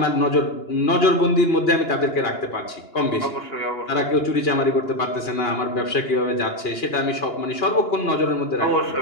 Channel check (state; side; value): late; right; 2.9 ms